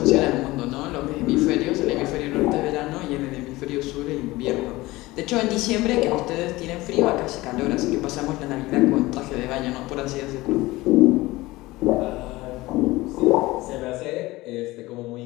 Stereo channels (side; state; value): right; quieter; 19.6 dB